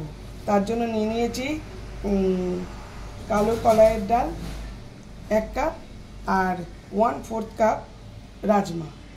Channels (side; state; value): both; identical; correlation 1.00